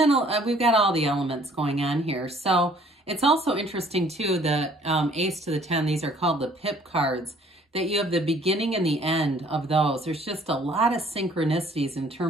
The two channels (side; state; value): both; normal; correlation 0.58